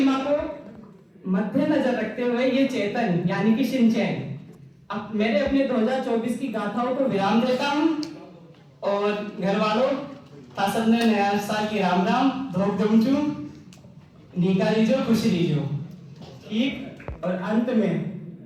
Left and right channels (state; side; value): identical; both; correlation 1.00